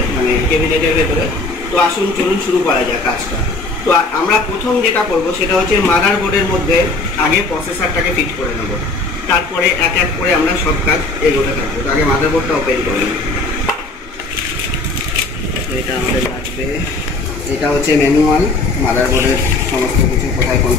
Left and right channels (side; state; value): right; quieter; 3.2 dB